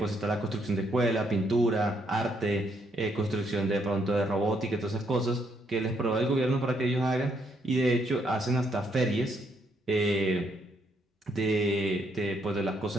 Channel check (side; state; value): both; normal; correlation 0.73